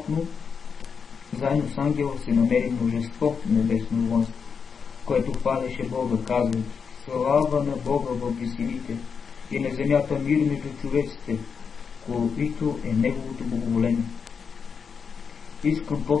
заедно с ангела се намери множество небесно воинство, което хвалеше Бога, казвайки: слава на Бога във висините и на земята мир между човеците, който е Неговото благоволение. Искам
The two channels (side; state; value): right; quieter; 6.1 dB